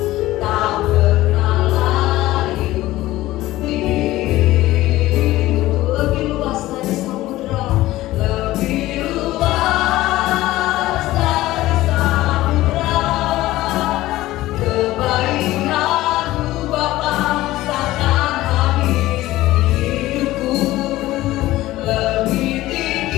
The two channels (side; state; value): right; quieter; 16.6 dB